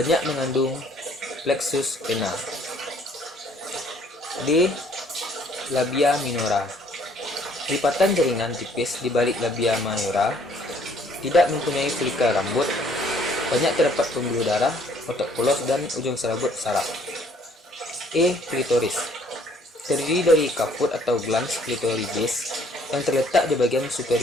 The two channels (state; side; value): normal; both; correlation 0.61